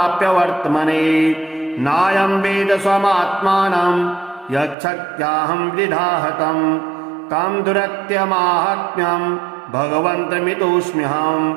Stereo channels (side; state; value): left; drops out; at 4.8 s